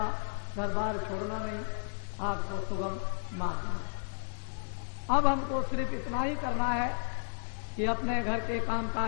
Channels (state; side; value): silent; right; 56 dB below the other